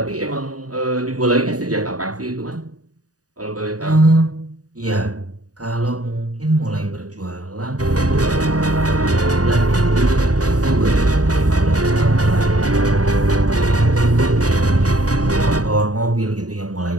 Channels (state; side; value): late; left; 0.67 ms